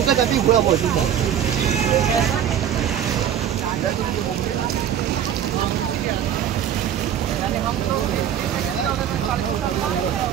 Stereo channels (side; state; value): left; quieter; 9.7 dB